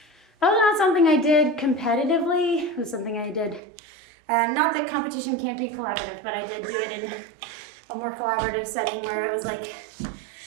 was not something I did competitively. It was something I did, not that competition can't be collaborative, but I did do it in a more collaborative setting where it was like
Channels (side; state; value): left; drops out; at 3.6 s